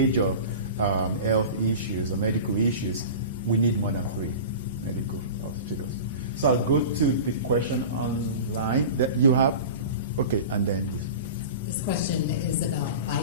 health issues or medical issues, we need more than 3 medical hospitals. So I'll go to the question online that you have. Okay, and then you. This question is about bike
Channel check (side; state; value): both; inverted; correlation -0.33